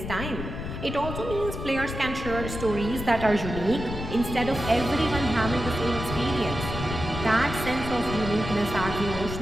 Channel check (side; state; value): left; noise; rumble, 7 dB below the sound